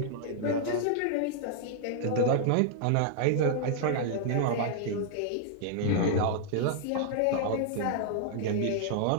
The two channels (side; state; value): both; different; correlation -0.01